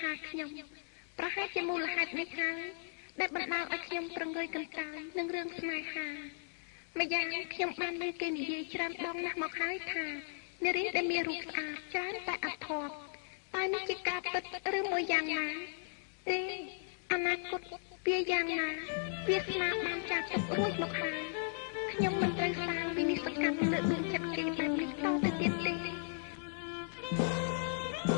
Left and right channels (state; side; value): silent; right; digital silence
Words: ហាខ្ញុំប្រហែលជាមូលហេតុនេះហើយដែលបណ្ដាលឲ្យខ្ញុំប្រងើយកន្តើយនឹងរឿងស្នេហាម្យ៉ាងខ្ញុំបានលើគេនិយាយច្រើនដងណាស់មកហើយថានារីដែលមានរូបស្អាតច្រើនតែអធម៌តែនេះជាការពិតឬមួយយ៉ាងណាទេអនាគតវាយ៉ាងណាវាស្នាបានចាស់ទុករួចមកហើយខ្ញុំមិនត្រូវសាងវិនិស្សកម្មលើដួងចិត្តគេបែបនេះតទៅទៀតទេ